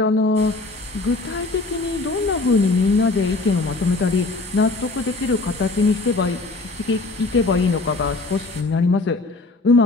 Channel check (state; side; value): quieter; right; 3.3 dB